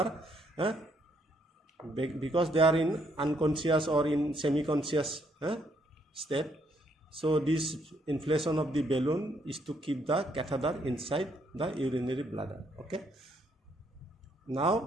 Because they are in unconscious or in semi-conscious state. So this inflation of the balloon is to keep the catheter inside the urinary bladder. Okay.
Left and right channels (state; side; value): normal; both; correlation 0.72